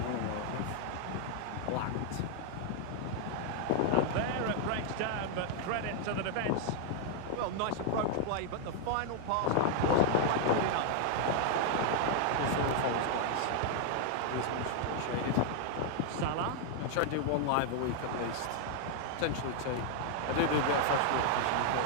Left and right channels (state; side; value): different; both; correlation 0.00